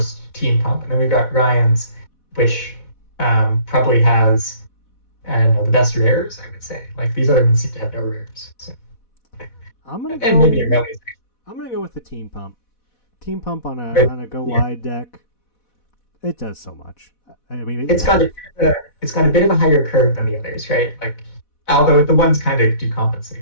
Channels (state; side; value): late; right; 4.1 ms